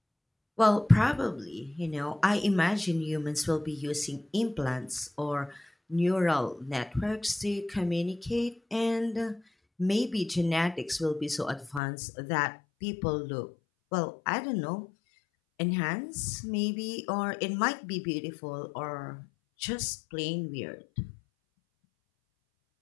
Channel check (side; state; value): right; drops out; at 11.8 s